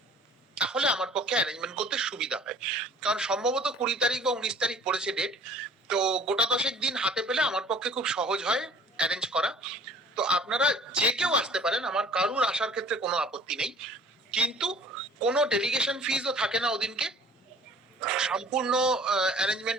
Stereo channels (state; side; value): normal; both; correlation 0.50